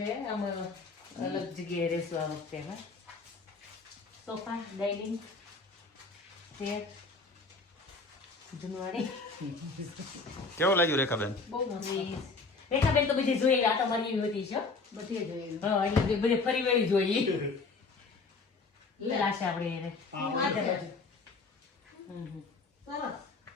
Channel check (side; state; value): right; quieter; 4.0 dB